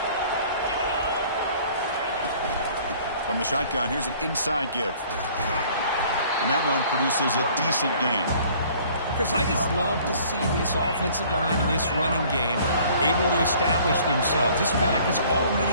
From the shotgun, here's an inside give. And that run produces a decent gain. Chris, I just love to see this offensive line in this running game able to establish themselves. This back is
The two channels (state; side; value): inverted; both; correlation -0.54